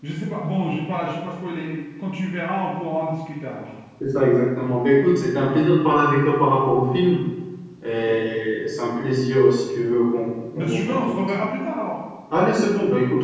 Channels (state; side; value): identical; both; correlation 1.00